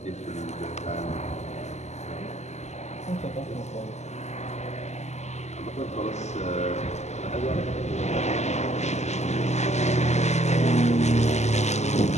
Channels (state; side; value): late; right; 0.33 ms